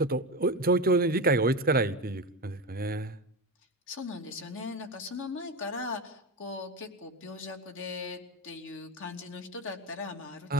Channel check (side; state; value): both; normal; correlation 0.19